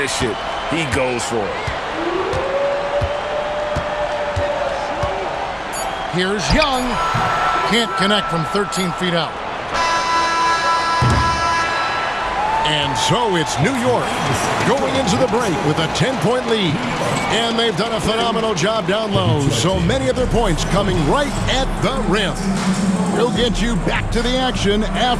it, he goes for it. Here's Young. Can't connect from 13 feet out. And so it's New York going into the break with a 10-point lead. And they've done a phenomenal job down low. So many of their points coming right at the rim. We'll get you back to the action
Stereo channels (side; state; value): both; identical; correlation 1.00